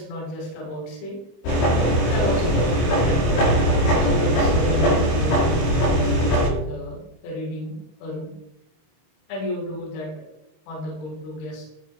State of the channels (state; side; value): late; right; 25 ms